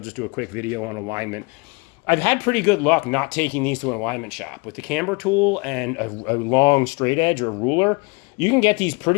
just do a quick video on alignment. I've had pretty good luck not taking these to an alignment shop. With the camber tool and a long straight edge or ruler, you can get these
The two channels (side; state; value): right; quieter; 29.2 dB